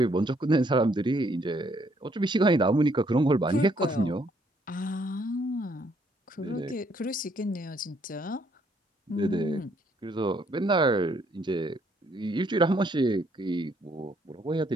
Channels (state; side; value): normal; both; correlation 0.68